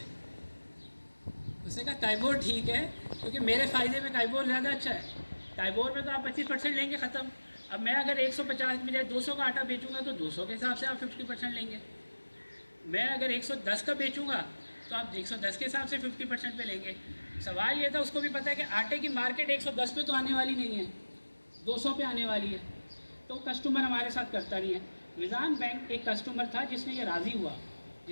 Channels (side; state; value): both; inverted; correlation -1.00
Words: उसने कहा काइबोर ठीक है क्योंकि मेरे फ़ायदे में काइबोर ज़्यादा अच्छा है। काइबोर में तो आप 25% लेंगे ख़त्म। अब मैं अगर 150 में 200 का आटा बेचूंगा तो 200 के हिसाब से आप 50% लेंगे। मैं अगर 110 का बेचूंगा तो आप 110 के हिसाब से 50% पे लेंगे। सवाल ये था, उसको भी पता है कि आटे की मार्केट 110 पे तो आने वाली नहीं है, 200 पे आने वाली है। तो कस्टमर हमारे साथ करता नहीं है। मिज़ान बैंक एक कस्टमर था जिसने ये राज़ी हुआ,